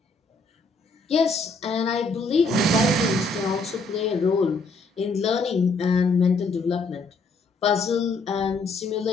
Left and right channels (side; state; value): right; quieter; 3.4 dB